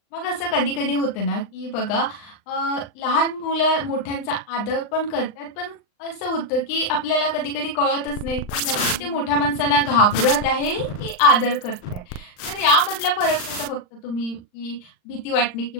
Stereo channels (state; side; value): late; right; 39 ms